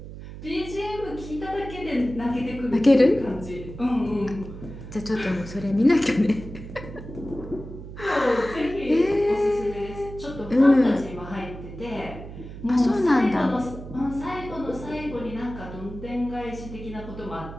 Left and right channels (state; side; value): noise; right; hum, 12 dB below the sound